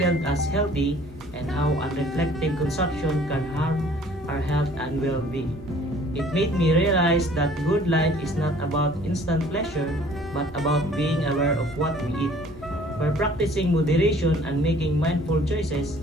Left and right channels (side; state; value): both; normal; correlation 0.54